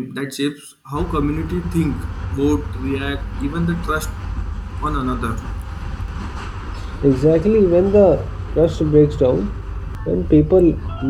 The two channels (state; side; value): identical; both; correlation 1.00